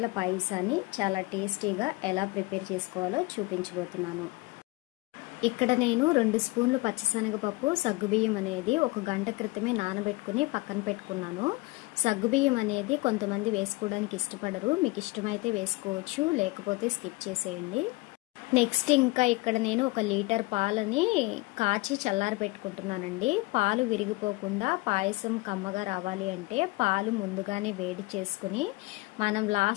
పాయసాన్ని చాలా టేస్టీగా ఎలా ప్రిపేర్ చేసుకోవాలో చూపించబోతున్నాను. ఇక్కడ నేను 2 స్పూన్లు పచ్చిశనగపప్పు, సగ్గుబియ్యం అనేది 1 గంట క్రితమే నానబెట్టుకుని పక్కన పెట్టుకున్నాను. సగ్గుబియ్యం అనేది కొంతమంది వేసుకోవడానికి ఇష్టపడరు, మీకు ఇష్టమైతే వేసుకోవచ్చు, లేకపోతే స్కిప్ చేసేయండి. నెక్స్ట్ ఇంకా ఇక్కడ నేను 1 లీటర్ పాలని కాచి చల్లారి పెట్టుకుంటున్నానండి. పాలు విరిగిపోకుండా పాయసం కమ్మగా రావాలి అంటే పాలు ముందుగానే వేడి చేసుకుని మనం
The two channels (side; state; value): right; quieter; 23.1 dB